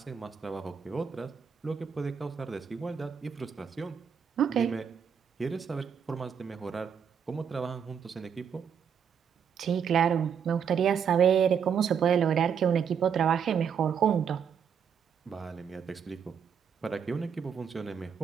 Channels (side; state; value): left; quieter; 7.4 dB